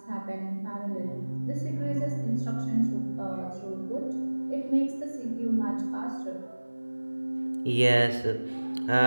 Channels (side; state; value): both; inverted; correlation -1.00